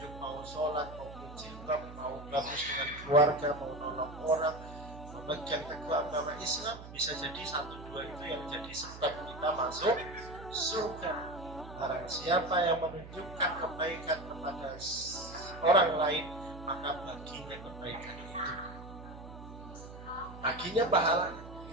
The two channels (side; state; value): right; noise; hum, 14 dB below the sound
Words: mau sholat, mau jilbab, mau bagus dengan keluarga, mau nolong orang, memegang teguh agama Islam, bisa jadi 1-2 itu yang jadi sebab kita masuk surga. Barang siapa yang menunjukkan kebaikan kepada orang lain, maka baginya kebaikan itu, baginya pahalanya.